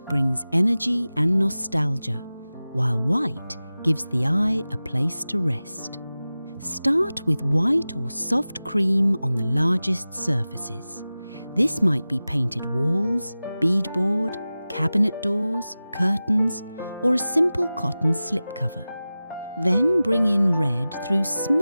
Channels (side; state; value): both; inverted; correlation -0.96